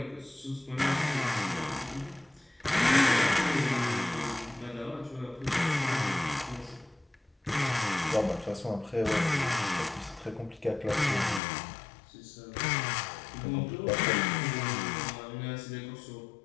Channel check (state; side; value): drops out; right; at 11.4 s